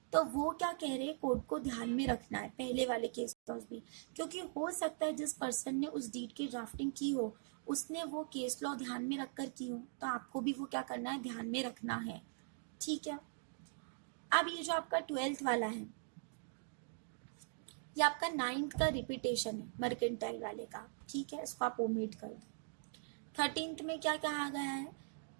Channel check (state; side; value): silent; left; digital silence